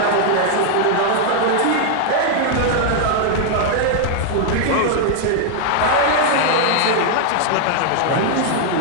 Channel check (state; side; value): different; both; correlation 0.00